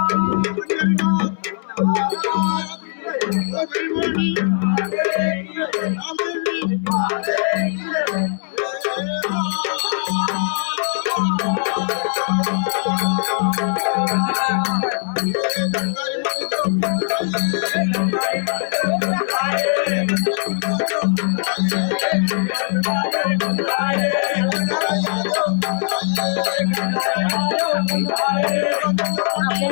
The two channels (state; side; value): silent; right; digital silence